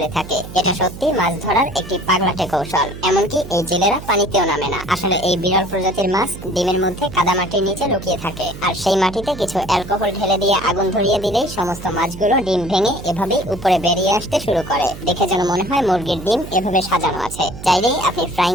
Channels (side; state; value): right; noise; hum, 13 dB below the sound